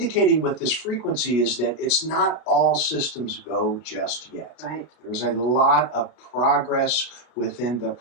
with this frequency is that it's not all systems go just yet. There's a lot of progress within the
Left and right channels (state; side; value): late; right; 33 ms